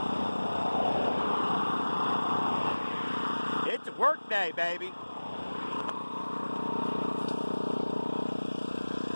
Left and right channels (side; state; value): both; inverted; correlation -1.00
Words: It's a work day, baby.